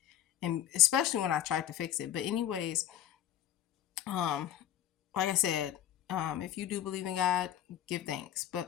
and especially when I tried to fix it. But anyways, um, like I said, if you do believe in God, give thanks.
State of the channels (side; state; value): right; quieter; 11.8 dB